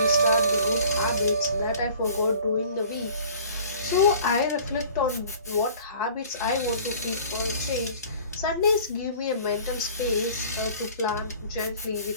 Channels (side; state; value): both; inverted; correlation -0.48